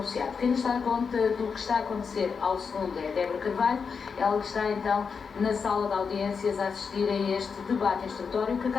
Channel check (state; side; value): quieter; right; 5.7 dB